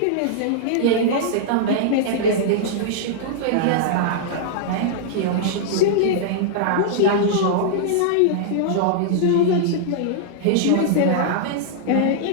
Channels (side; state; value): both; different; correlation -0.01